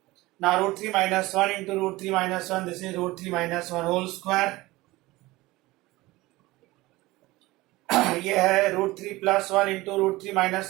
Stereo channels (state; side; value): quieter; left; 19.8 dB